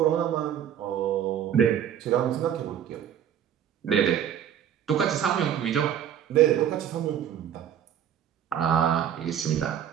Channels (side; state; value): left; quieter; 9.6 dB